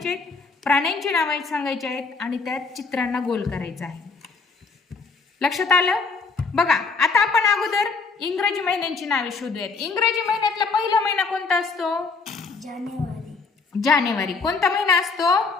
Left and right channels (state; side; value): quieter; right; 4.4 dB